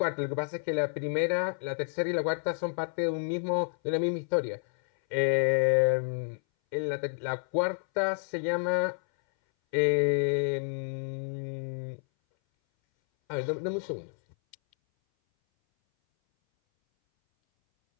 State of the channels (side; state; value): right; silent; 58 dB below the other